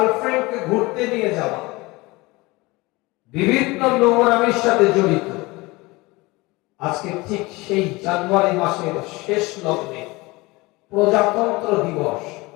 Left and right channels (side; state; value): right; quieter; 22.7 dB